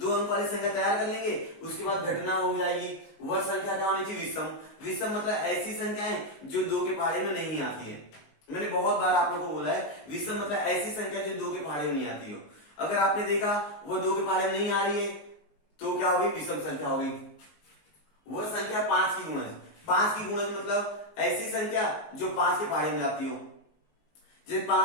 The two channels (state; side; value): late; right; 19 ms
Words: अंक वाली संख्या तैयार कर लेंगे, उसके बाद घटना हो जाएगी। वह संख्या क्या होनी चाहिए विषम। विषम मतलब ऐसी संख्याएं जो 2 के पहाड़े में नहीं आती है। मैंने बहुत बार आप लोगों को बोला है विषम मतलब ऐसी संख्या जो 2 के पहाड़े में नहीं आती हो। अगर आपने देखा वो 2 के पहाड़े में नहीं आ रही है तो क्या होगी विषम संख्या होगी। वह संख्या 5 की गुणज। 5 की गुणज मतलब ऐसी संख्या जो 5 के पहाड़े में जाती हो, जैसे